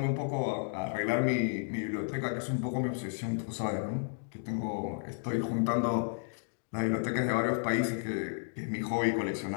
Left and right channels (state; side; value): silent; right; digital silence